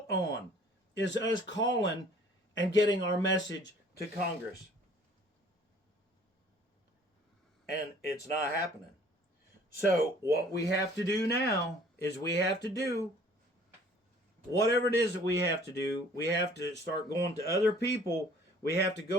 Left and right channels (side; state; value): both; normal; correlation 0.54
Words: on, is us calling and getting our message to Congress. And it's not happening. So what we have to do now is we have to do whatever it is that we have to do. We have to start going to other people. We have to